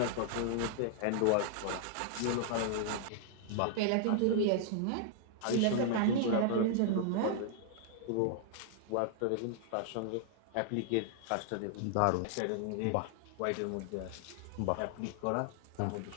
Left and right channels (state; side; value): different; both; correlation -0.01